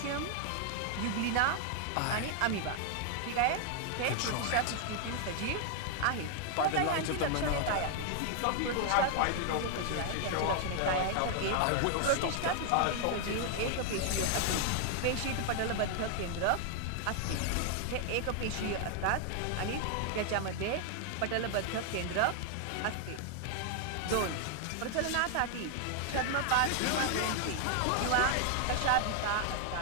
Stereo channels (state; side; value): different; both; correlation 0.00